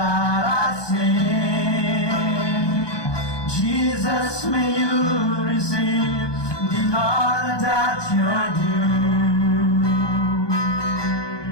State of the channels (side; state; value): right; late; 1.2 ms